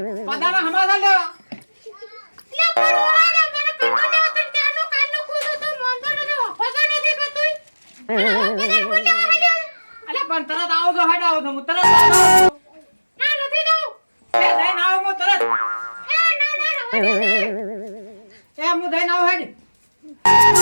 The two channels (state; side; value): inverted; both; correlation -1.00